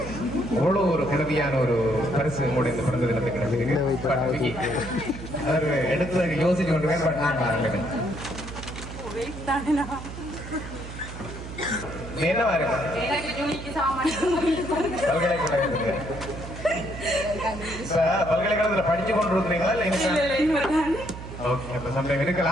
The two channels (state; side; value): noise; right; hum, 11 dB below the sound